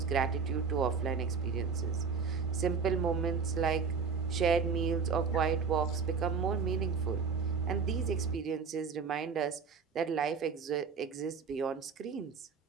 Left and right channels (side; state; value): left; quieter; 5.7 dB